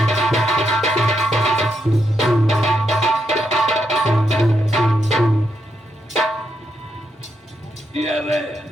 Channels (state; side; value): normal; both; correlation 0.81